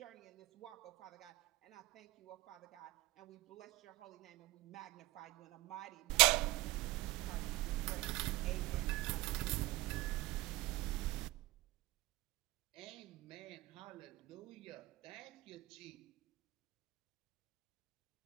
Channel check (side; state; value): left; quieter; 19.6 dB